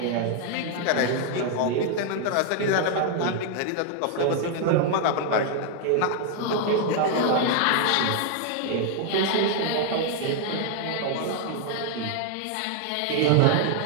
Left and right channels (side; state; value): both; different; correlation 0.00